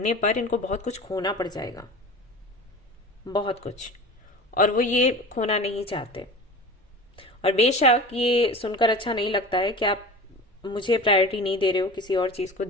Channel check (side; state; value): both; normal; correlation 0.35